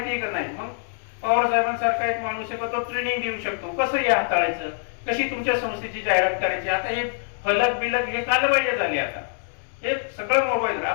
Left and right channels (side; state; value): right; silent; digital silence